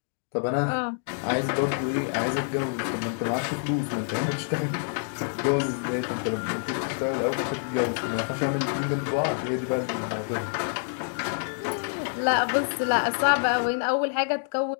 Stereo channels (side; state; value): right; silent; digital silence